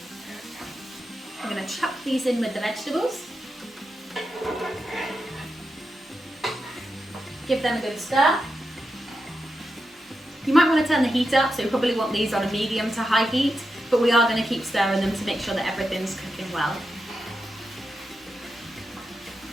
I'm going to chuck these in with the vegetables. Give them a good stir. You might want to turn the heat up, so you probably want these on a medium to high heat, but we are going to keep stirring them to make sure that everything's cooking well.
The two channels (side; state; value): both; normal; correlation 0.88